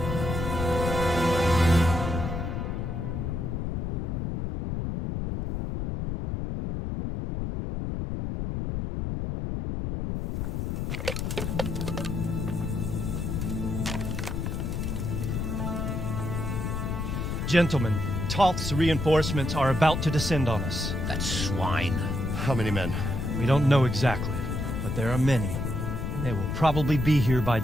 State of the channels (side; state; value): left; noise; rumble, 2 dB below the sound